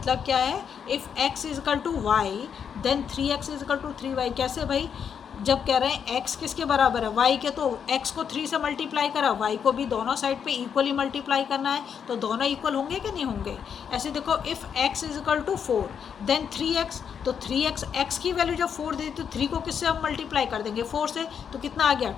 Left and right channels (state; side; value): quieter; right; 7.5 dB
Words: क्या है, if x is equal to Y then 3x is equal to 3y। कैसे भाई, जब कह रहे हैं x किसके बराबर है, y के, तो x को 3 से मल्टीप्लाई करा, y को भी दोनों साइड पे इक्वली मल्टीप्लाई करना है, तो दोनों इक्वल होंगे कि नहीं होंगे। ऐसे देखो, if x is equal to 4 then 3x, तो 3x x की वैल्यू जब 4 दे तो 3 को किससे हम मल्टीप्लाई कर देंगे, 4 से, तो कितना आ गया